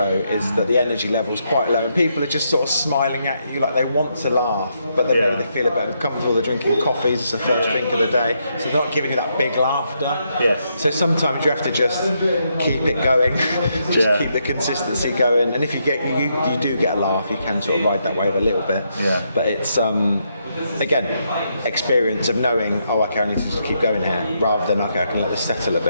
is that the energy level is quite low, and people are just sort of smiling at you like they want to laugh, but then maybe they feel a bit uncomfortable. They're drinking coffees. It's the first drink of the day, so they're not giving you that big laughter. Yes. So sometimes you have to just keep it going, keep the consistency going, and if you do get a laugh, you can sort of ride that wave a little bit. Yeah. But it's again, experience of knowing, okay, I need to just keep going here, rather than okay, I can let this settle a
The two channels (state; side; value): inverted; both; correlation -0.78